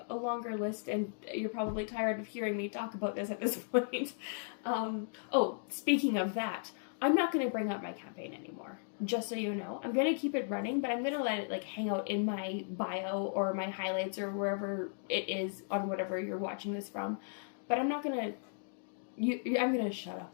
a longer list, and you're probably tired of hearing me talk about this at this point. Oh, speaking of that, I'm not going to bring up my campaign anymore, just so you know. I'm going to keep it running, but I'm going to let it like hang out in my bio or my highlights or wherever it is on whatever you're watching this from. But I'm not going to, I'm going to shut up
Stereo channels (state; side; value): silent; right; digital silence